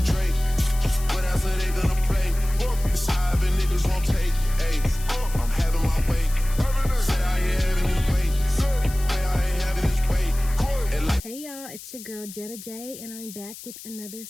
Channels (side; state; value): left; noise; hiss, 15 dB below the sound